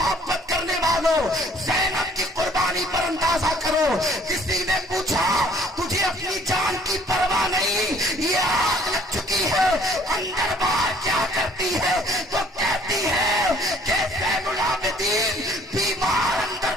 کرنے والوں، زینب کی قربانی پر اندازہ کرو۔ کسی نے پوچھا تجھے اپنی جان کی پرواہ نہیں، یہ آگ لگ چکی ہے، اندر باہر کیا کرتی ہے؟ تو کہتی ہے کہ زین العابدین بیمار اندر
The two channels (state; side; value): normal; both; correlation 0.58